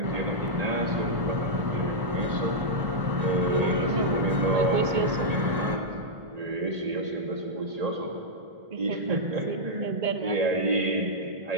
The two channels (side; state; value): left; late; 1.1 ms